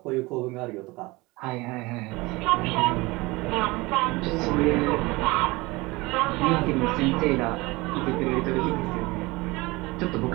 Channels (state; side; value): quieter; left; 22.6 dB